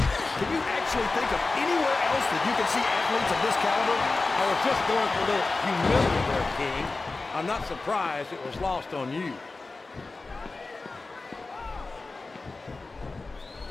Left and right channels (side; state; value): right; quieter; 3.6 dB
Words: Can you actually think of anywhere else that you can see athletes of this caliber? I was just going for a little humility there, King. I'm not surprised it was lost on you.